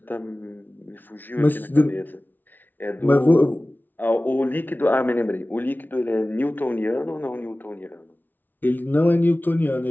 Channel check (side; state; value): right; late; 0.088 ms